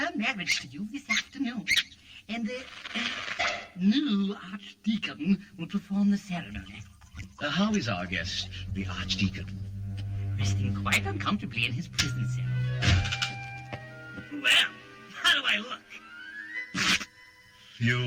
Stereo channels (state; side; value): identical; both; correlation 1.00